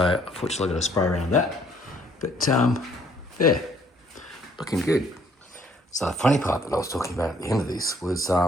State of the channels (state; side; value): normal; both; correlation 0.63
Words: unfortunately I've got to spray around that. But yeah, looking good. So the funny part that I was talking about at the end of this was,